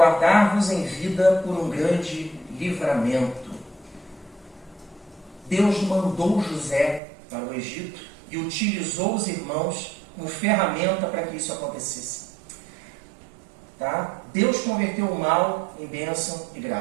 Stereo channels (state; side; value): drops out; left; at 7.0 s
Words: em vida por um grande livramento. Deus mandou José para o Egito e utilizou os irmãos como ferramenta para que isso acontecesse. Tá? Deus converteu o mal em bênção e